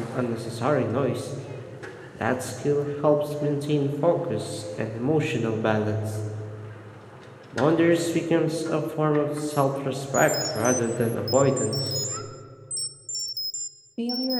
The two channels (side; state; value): both; identical; correlation 1.00